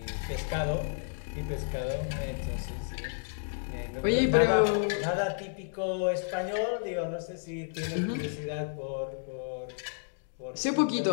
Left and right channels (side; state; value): right; silent; digital silence